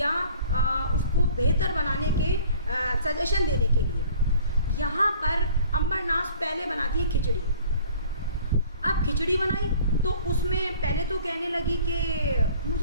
उसको बेहतर बनाने के सजेशन देने के लिए। यहाँ पर अंबर नाज पहले बनाती है खिचड़ी। अब खिचड़ी बनाई तो उसमें पहले तो कहने लगी कि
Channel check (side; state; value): both; inverted; correlation -0.50